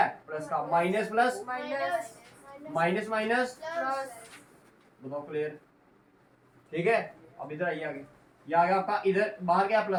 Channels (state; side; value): identical; both; correlation 1.00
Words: प्लस का, minus plus minus minus minus, plus बताओ क्लियर, ठीक है। अब इधर आइए आगे, ये आ गया आपका, इधर बाहर क्या